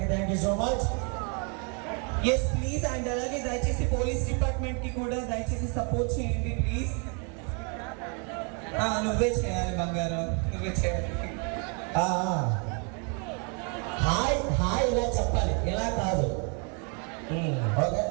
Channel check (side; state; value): left; quieter; 36.7 dB